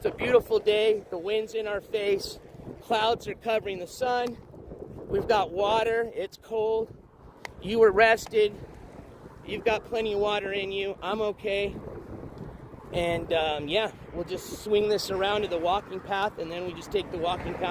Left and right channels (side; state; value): both; identical; correlation 1.00